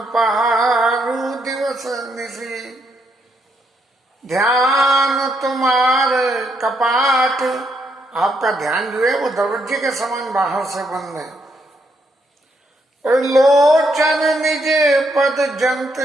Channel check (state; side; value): normal; both; correlation 0.76